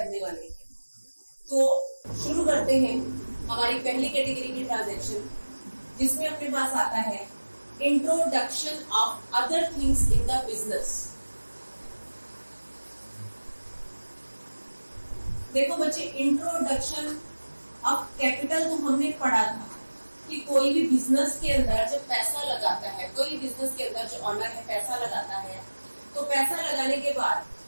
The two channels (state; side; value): inverted; both; correlation -1.00